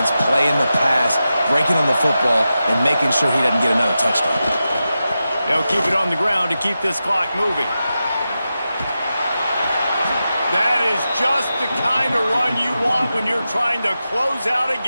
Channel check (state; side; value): inverted; both; correlation -0.91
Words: playing the pass, breaking on the football, and making sure he doesn't get another touchdown. They'll keep it on the ground to keep this clock moving. That is just the kind of run you want when you're trying to close out a